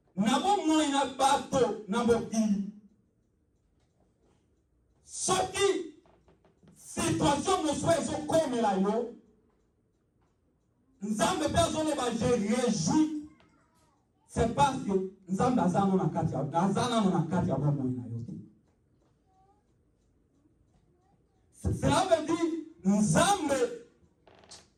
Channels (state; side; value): identical; both; correlation 1.00